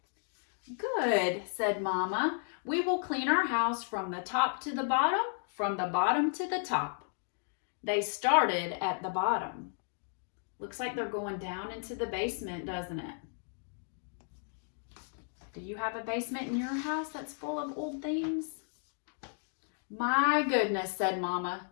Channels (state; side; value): silent; right; 55 dB below the other